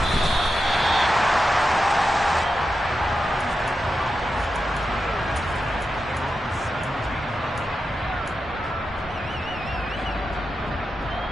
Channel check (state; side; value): normal; both; correlation 0.89